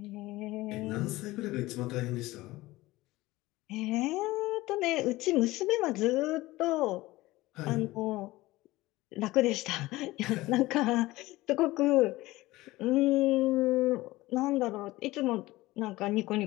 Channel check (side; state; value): right; quieter; 18.9 dB